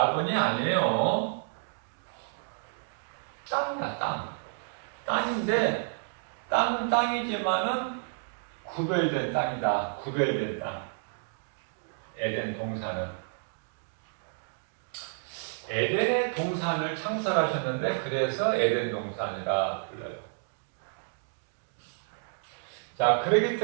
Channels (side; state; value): left; silent; digital silence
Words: 아니에요. 땅이야, 땅. 땅인데 땅은 땅이지만은 구별된 땅이다. 구별된 땅. 에덴 동산은. 에덴의 동산을 창설하셨는데 그래서 에덴 동산이라 불러요. 자, 그렇기